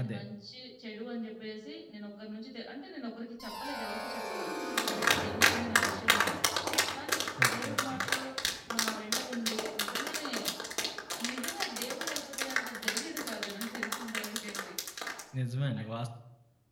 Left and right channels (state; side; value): identical; both; correlation 1.00